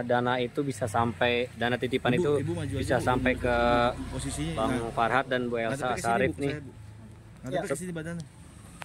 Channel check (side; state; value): both; identical; correlation 1.00